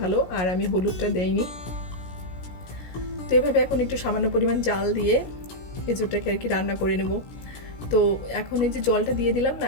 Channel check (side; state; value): right; late; 17 ms